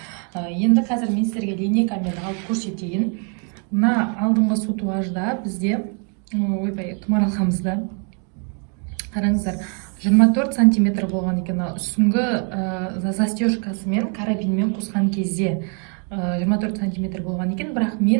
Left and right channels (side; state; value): left; quieter; 39.0 dB